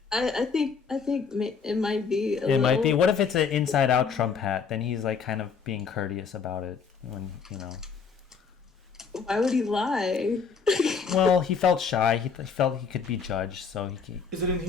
I think it might be. It might be. What if it's an inside out Trump hat? Then he's like kind of being courteous about it when, you know. Why would he lie? Well, he felt shy. He felt he could be judged, so he. Is it in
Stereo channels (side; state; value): right; quieter; 5.8 dB